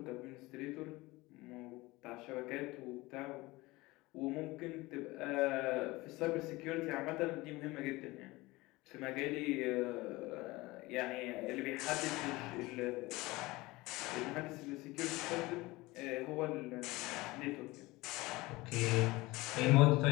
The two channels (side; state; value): right; quieter; 21.0 dB